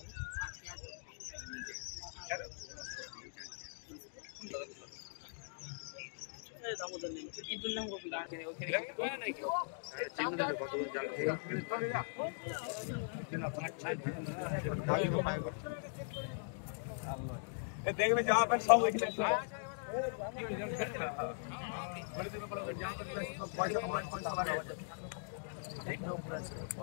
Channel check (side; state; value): right; silent; digital silence